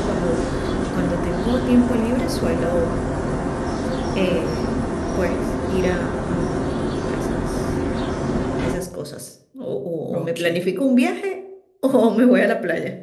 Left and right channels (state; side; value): identical; both; correlation 1.00